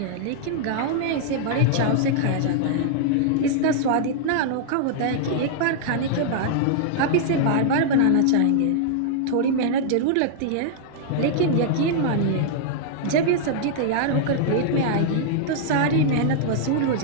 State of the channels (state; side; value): different; both; correlation -0.01